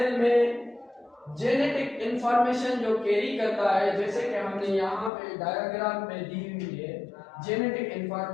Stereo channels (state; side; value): drops out; right; at 5.1 s